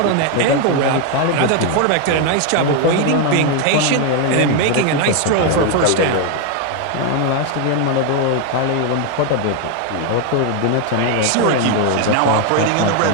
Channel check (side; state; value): both; different; correlation 0.01